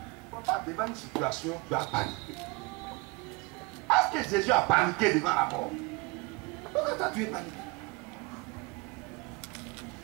Pas devant une situation, tu as paniqué. Est-ce que Jésus a paniqué devant la mort? Pourquoi toi tu es paniqué?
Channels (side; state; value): left; quieter; 25.9 dB